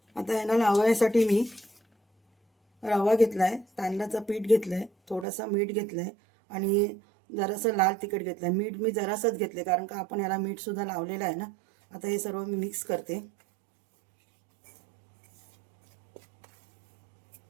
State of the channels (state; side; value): drops out; left; at 5.2 s